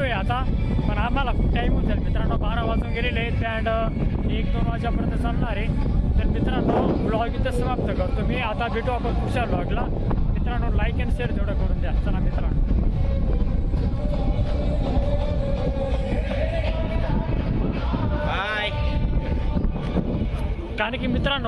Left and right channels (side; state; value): both; identical; correlation 1.00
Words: आता, पण आम्हाला खूप टाईम होऊन जाईल मित्रांनो, 12 वाजून गेलेले आहेत अँड 1-2 वाजेपर्यंत चालणार आहे. तर मित्रांनो ब्लॉग इथं समाप्त करतो मी. आता भेटू आपण पुढच्या ब्लॉगला. मित्रांनो लाईक अँड शेअर तेवढं करून द्या. चला मित्रांनो, बाय. कारण की